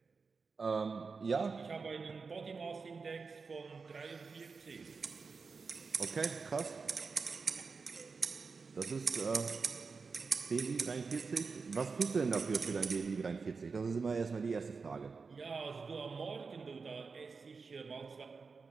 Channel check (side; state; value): left; quieter; 4.8 dB